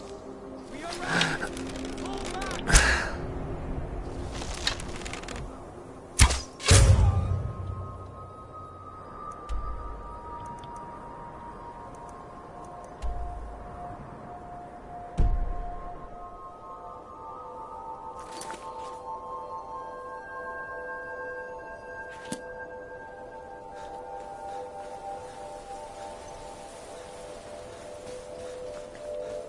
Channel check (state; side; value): identical; both; correlation 1.00